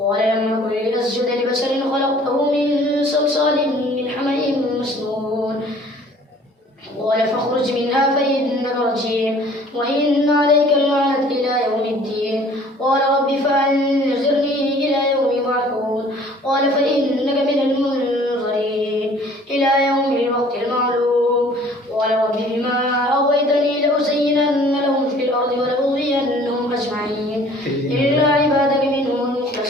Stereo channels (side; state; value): both; normal; correlation 0.53